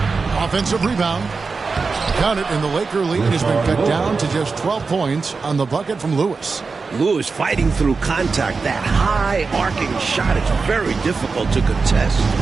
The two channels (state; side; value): quieter; left; 4.5 dB